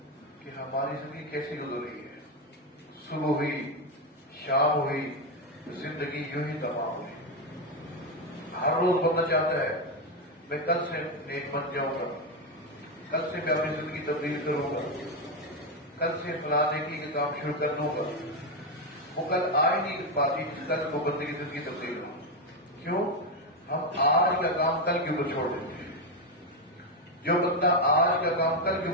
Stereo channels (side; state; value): both; normal; correlation 0.08